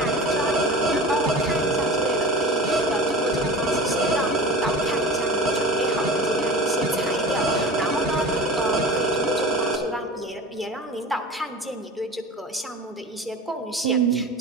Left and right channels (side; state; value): both; normal; correlation 0.34